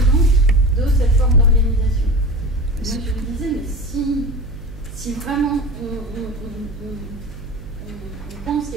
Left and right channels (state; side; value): noise; right; hum, 14 dB below the sound